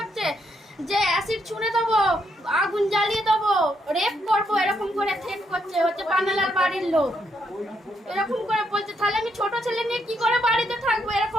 যে অ্যাসিড ছুঁড়ে দেবো, আগুন জ্বালিয়ে দেবো, রেপ করবো, এরকম করে থ্রেট করছে। হচ্ছে পান্নালাল বাড়ির লোক, এরকম করে বলছে। তাহলে আমি ছোট ছেলে নিয়ে কি করে বাড়িতে থাকবো?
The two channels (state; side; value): normal; both; correlation 0.76